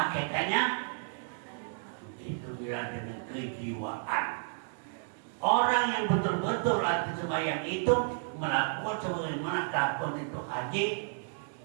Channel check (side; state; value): left; silent; digital silence